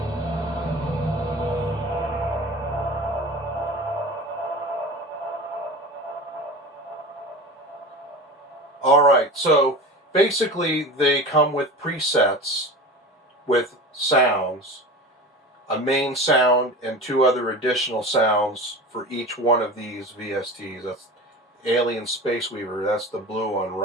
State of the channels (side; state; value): both; normal; correlation 0.32